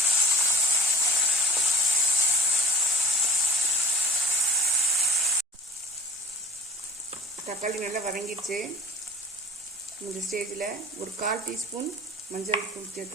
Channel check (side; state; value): both; normal; correlation 0.44